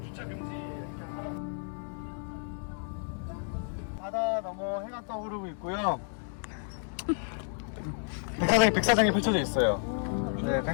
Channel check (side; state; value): right; silent; 57 dB below the other